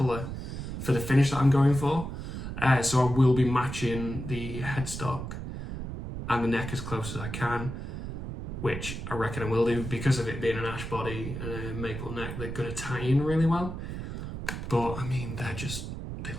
for the finish that I'm going for, so I will be matching the headstock and the neck as close as I can, which I reckon I will do because of it being an ash body and a maple neck. They're going to tie in really well, but I mean they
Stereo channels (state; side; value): noise; right; rumble, 6 dB below the sound